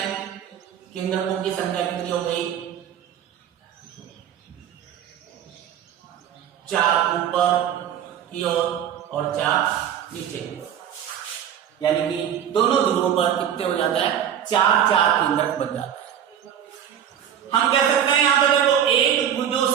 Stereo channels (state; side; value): quieter; left; 9.6 dB